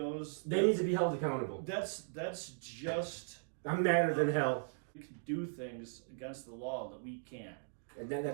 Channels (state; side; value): silent; left; digital silence